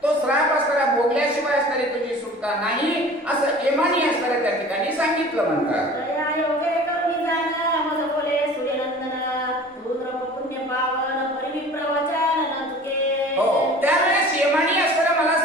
तो श्राप असणारा भोगल्याशिवाय असणारी तुझी सुटका नाही असं यमानी असणाऱ्या त्या ठिकाणी सांगितलं म्हणतात. दया योगे करुणी जाण मज बोले सूर्यनंदन, तू द्रव पुण्य पावन परिविप्र वचन न चुके. हो, त्यावेळेस यमानी असणारा मला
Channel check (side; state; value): both; normal; correlation 0.44